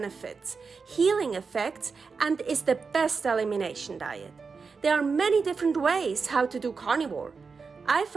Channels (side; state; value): left; quieter; 5.0 dB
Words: healing effects, and is the best elimination diet. There are many different ways how to do carnivore. I